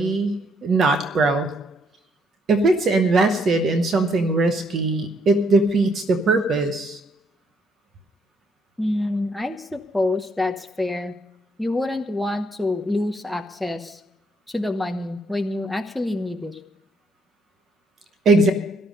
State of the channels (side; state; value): both; normal; correlation 0.70